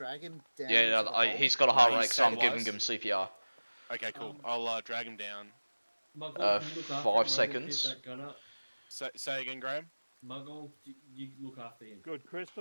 him down. Yeah, into the hole. he's got a heart No, rate, he's so I'm giving stabilised. him CPR. Okay, cool. I'll drag him down. Muggle, Uh, can you look 5 after him, Muggle, seconds. Keep that gun up. Say again, Graham. Muggle, you look after him. Good,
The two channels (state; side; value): inverted; both; correlation -1.00